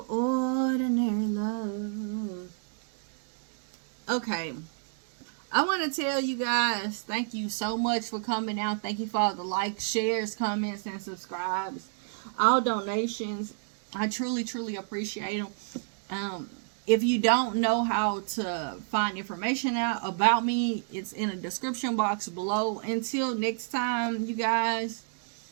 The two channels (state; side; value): silent; left; digital silence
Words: ordinary love. Okay. I want to tell you guys, thank you so much for coming out. Thank you for all the likes, shares, comments, and subscribes. All donations. I truly, truly appreciate them. If you don't know how to find information out about me, it's in the description box below. Until next time, you guys,